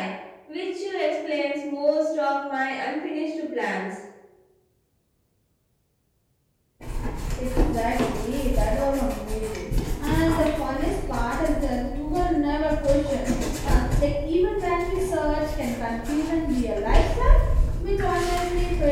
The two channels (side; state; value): both; identical; correlation 1.00